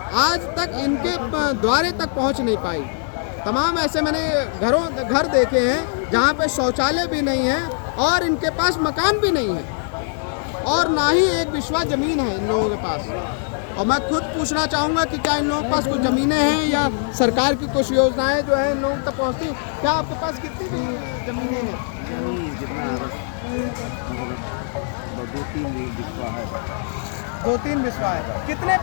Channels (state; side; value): silent; right; 64 dB below the other